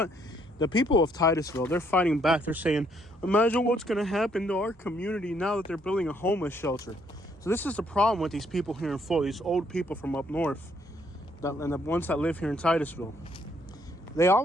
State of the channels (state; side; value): normal; both; correlation 0.69